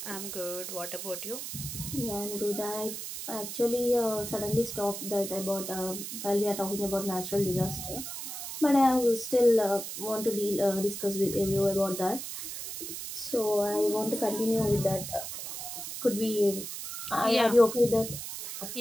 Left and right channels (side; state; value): right; noise; hiss, 7 dB below the sound